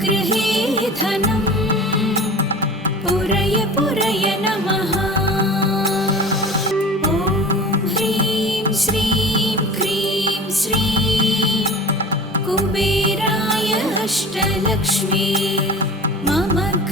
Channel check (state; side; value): normal; both; correlation 0.38